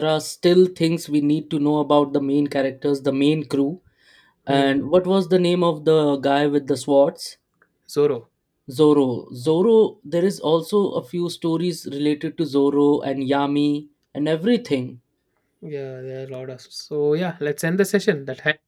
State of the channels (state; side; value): identical; both; correlation 1.00